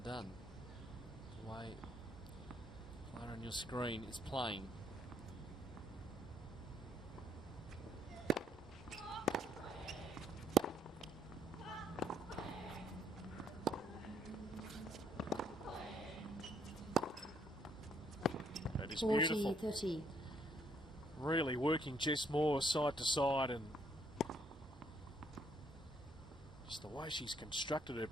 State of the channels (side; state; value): both; normal; correlation 0.69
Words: The way player on your screen is playing. That is beautiful. 30. Really working Jess Moore side to side, and just the way she's constructed her